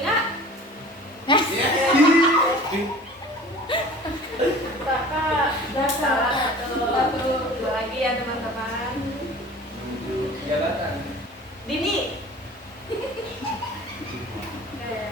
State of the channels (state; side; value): normal; both; correlation 0.43